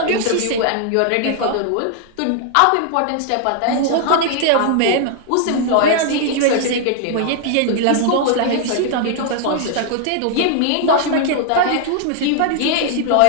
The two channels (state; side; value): different; both; correlation 0.00